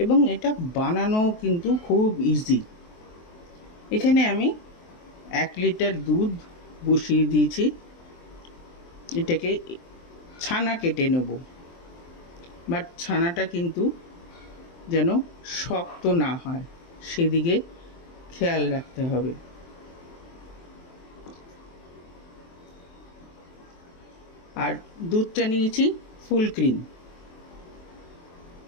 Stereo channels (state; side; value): late; right; 23 ms